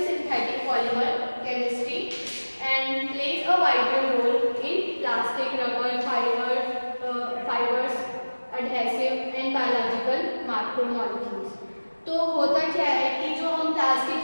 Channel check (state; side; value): inverted; both; correlation -1.00